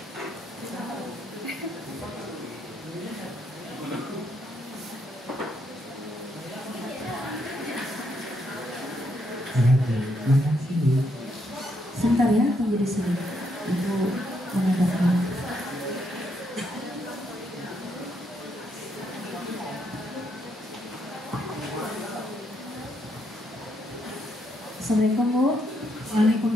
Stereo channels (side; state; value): both; normal; correlation 0.76